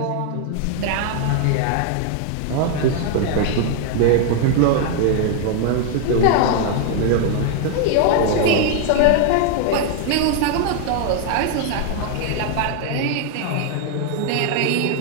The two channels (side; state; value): both; different; correlation 0.00